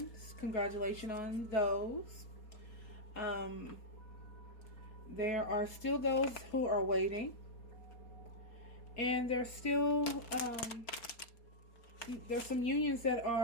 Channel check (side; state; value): right; late; 4.3 ms